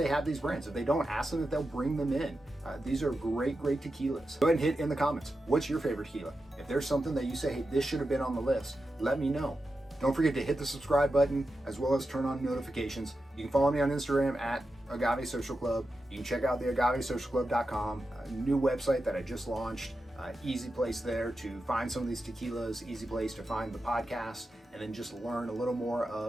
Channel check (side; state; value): both; normal; correlation 0.90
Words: have these brands. If they don't, ask them if they'll bring them in. These are great tequilas. Go ahead and hit in the comments. What's your favorite tequila? If there's something that you say, hey, this should have been on the list, let me know. Don't forget to hit the subscribe button as well as turn on notifications. You can follow me on Instagram at Agave Social Club. You can check out the AgaveSocialClub.com, a new website that I just launched. Easy place there to find some of these tequilas, easy place to find the podcast, and then just learn a little more